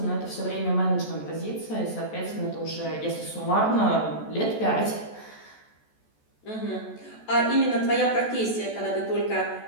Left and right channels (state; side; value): late; right; 14 ms